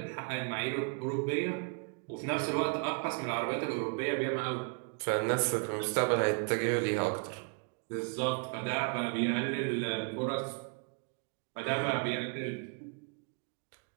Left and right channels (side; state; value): left; quieter; 38.5 dB